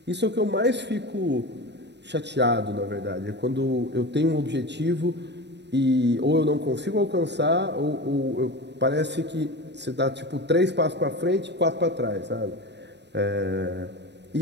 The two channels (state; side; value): late; left; 0.50 ms